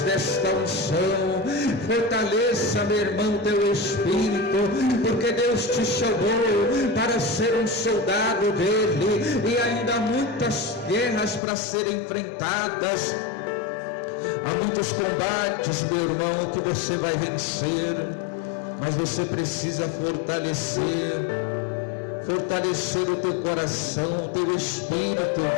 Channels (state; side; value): drops out; right; at 11.4 s